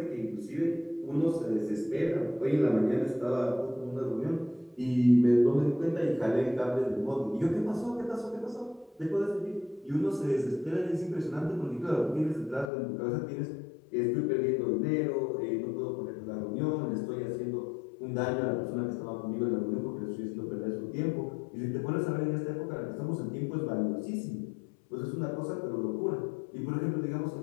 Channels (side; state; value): right; drops out; at 12.7 s